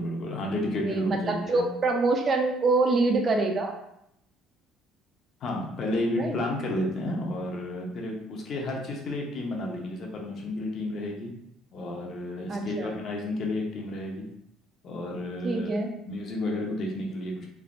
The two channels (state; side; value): normal; both; correlation 0.67